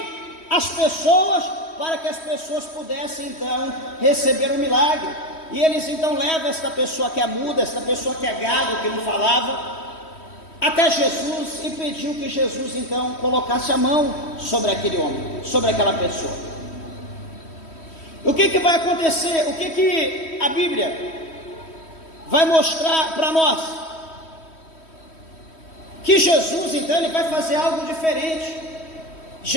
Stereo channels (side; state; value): right; late; 3.1 ms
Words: as pessoas, para que as pessoas pudessem então receber o milagre. E eles então levam esta pessoa que é muda, esta pessoa que é gago, que não falava, até Jesus, e pediu que Jesus então colocasse a mão sobre aquele homem, sobre aquela pessoa. O que vai acontecer? O que a Bíblia vai mostrar para nós? Que Jesus então ele vai fazer algo diferente.